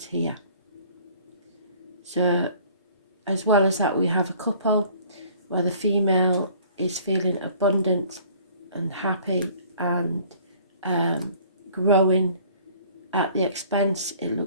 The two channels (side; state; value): both; inverted; correlation -0.53